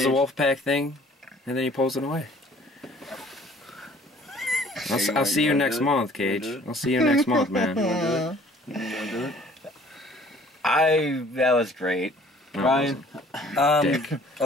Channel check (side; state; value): both; normal; correlation 0.55